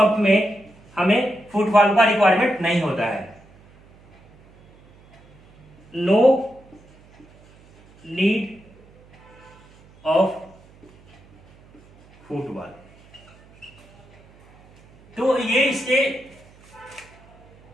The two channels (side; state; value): right; noise; hum, 27 dB below the sound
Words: में हमें फुट वाल्व का रिक्वायरमेंट नहीं होता है। No need of foot valve. तो ये इसके